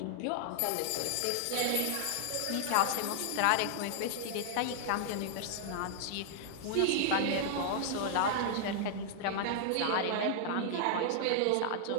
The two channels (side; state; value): both; different; correlation -0.01